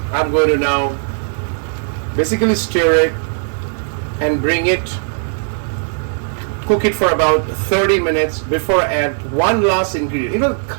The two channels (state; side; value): silent; left; digital silence